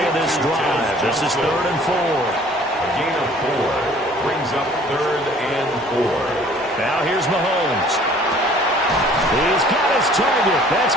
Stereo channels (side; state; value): both; normal; correlation 0.53